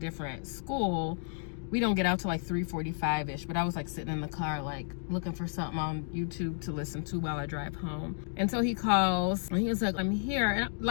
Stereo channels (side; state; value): right; silent; 56 dB below the other